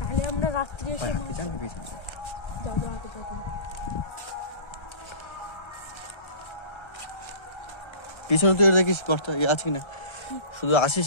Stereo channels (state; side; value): late; right; 1.3 ms